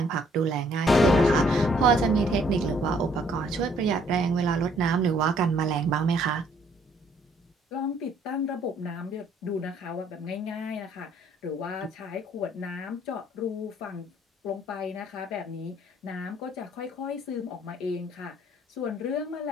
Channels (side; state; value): both; normal; correlation 0.64